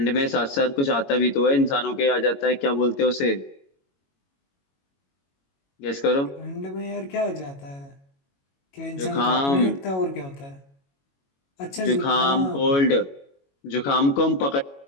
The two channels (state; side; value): late; right; 22 ms